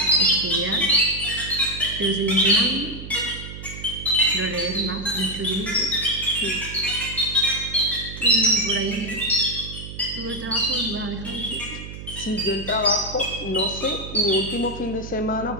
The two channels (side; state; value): right; noise; hum, 11 dB below the sound